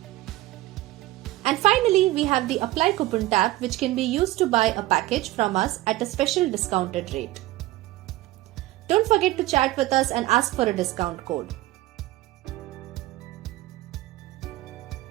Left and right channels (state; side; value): quieter; left; 17.4 dB